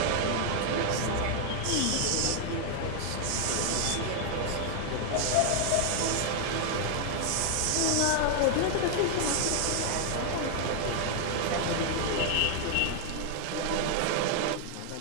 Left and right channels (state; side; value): different; both; correlation 0.00